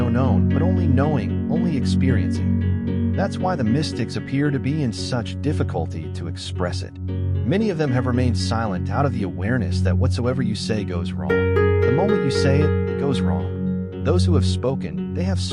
known, but only knowing, only experiencing. That's why the mystics appear to be in such difficulty to express it. Many of them have remained silent out of the awareness that whatsoever you say goes wrong. The moment you say it, it goes wrong. Those who have spoken, they have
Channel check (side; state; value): both; identical; correlation 1.00